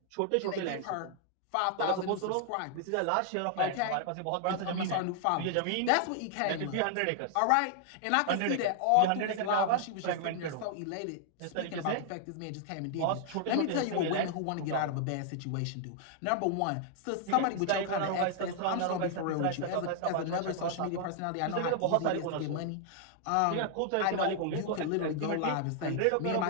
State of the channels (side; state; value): both; different; correlation -0.01